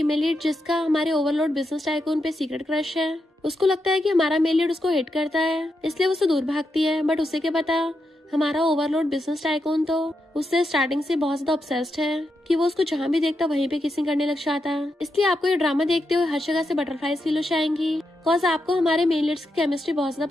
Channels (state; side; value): normal; both; correlation 0.85